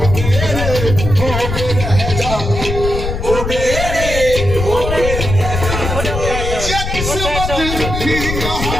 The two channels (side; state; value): left; noise; rumble, 4 dB below the sound